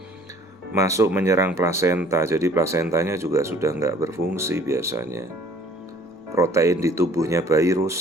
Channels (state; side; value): normal; both; correlation 0.53